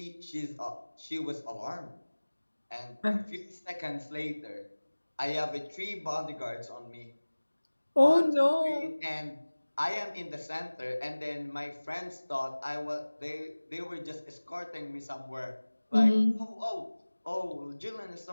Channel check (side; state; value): both; inverted; correlation -1.00